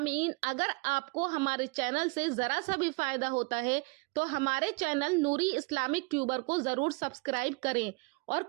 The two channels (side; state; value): left; quieter; 29.0 dB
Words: اگر آپ کو ہمارے چینل سے ذرا سا بھی فائدہ ہوتا ہے تو ہمارے چینل نوری اسلامک ٹیوبر کو ضرور سبسکرائب کریں اور